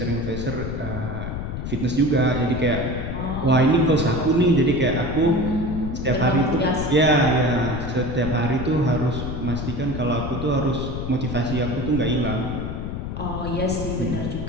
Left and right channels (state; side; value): noise; left; rumble, 5 dB below the sound